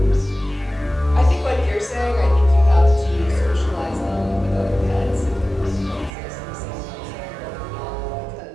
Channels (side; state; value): left; drops out; at 6.1 s